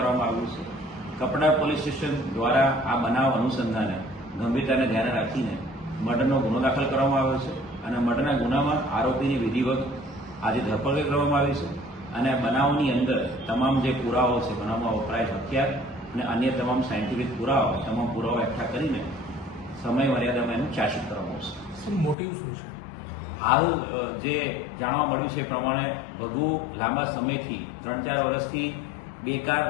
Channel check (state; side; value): drops out; right; at 22.2 s